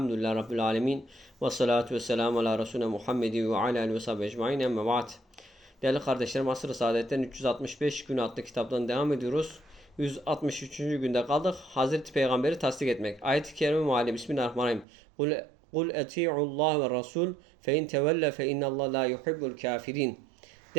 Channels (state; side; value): drops out; left; at 14.9 s